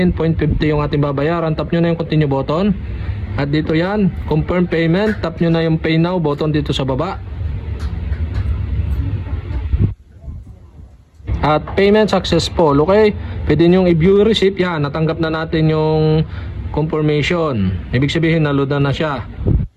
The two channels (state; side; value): identical; both; correlation 1.00